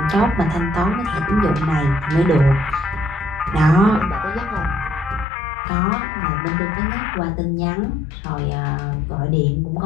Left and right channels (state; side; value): drops out; right; at 5.2 s